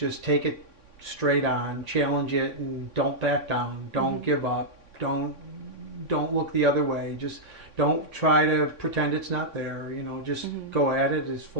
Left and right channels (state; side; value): late; left; 3.6 ms